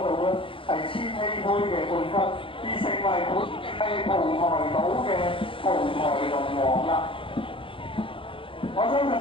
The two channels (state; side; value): late; right; 0.25 ms